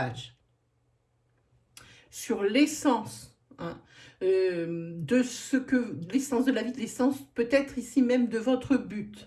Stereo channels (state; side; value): identical; both; correlation 1.00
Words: sur l'essence de ce que l'essence de la vie, l'essence peut-être ici même de votre